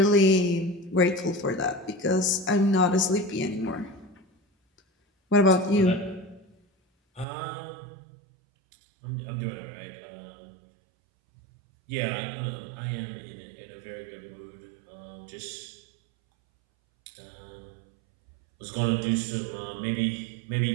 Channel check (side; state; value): left; drops out; at 7.2 s